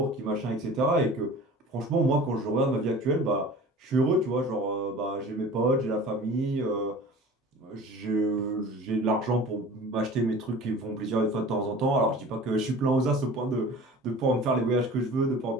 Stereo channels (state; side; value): normal; both; correlation 0.41